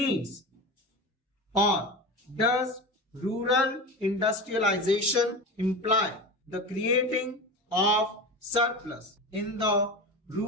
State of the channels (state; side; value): normal; both; correlation 0.27